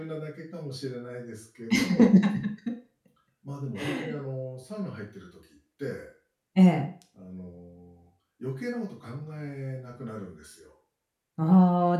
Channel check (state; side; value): identical; both; correlation 1.00